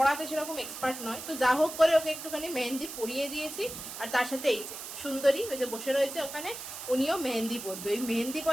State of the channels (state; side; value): noise; right; hiss, 9 dB below the sound